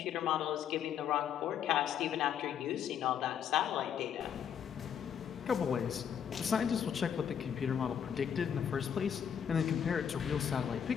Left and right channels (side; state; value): right; quieter; 8.4 dB